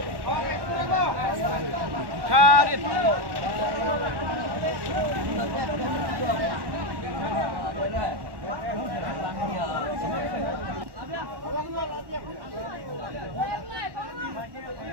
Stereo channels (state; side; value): late; left; 1.1 ms